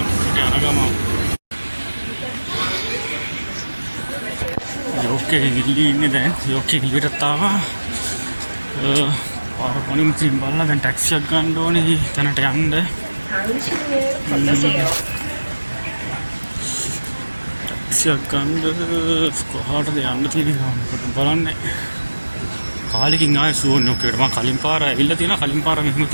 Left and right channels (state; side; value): inverted; both; correlation -1.00